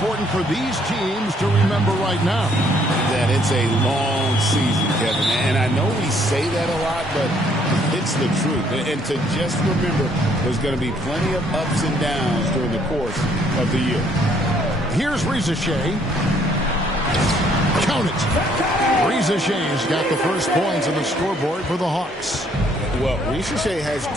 for these teams to remember right now? That it's a long season, Kevin. And I know we say that a lot, but it's the truth. And to just remember, there's going to be plenty of ups and downs during the course of the year. Here's Shai. Count it. Shai's got the first points on the scoreboard for the Hawks. Well, Shai has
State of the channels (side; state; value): both; normal; correlation 0.65